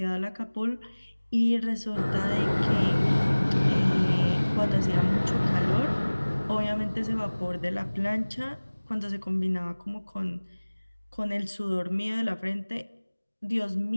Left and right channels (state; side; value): inverted; both; correlation -1.00